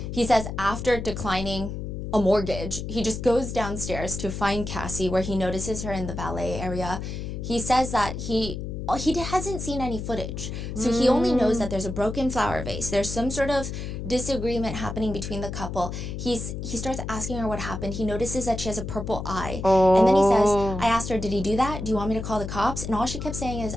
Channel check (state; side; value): noise; left; hum, 6 dB below the sound